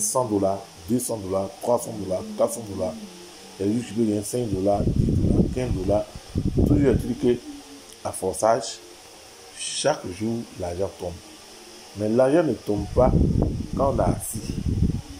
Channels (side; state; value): both; identical; correlation 1.00